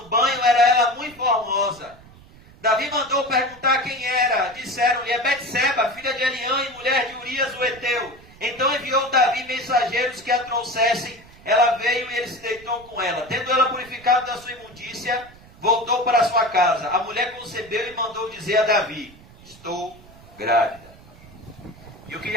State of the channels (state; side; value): noise; right; rumble, 23 dB below the sound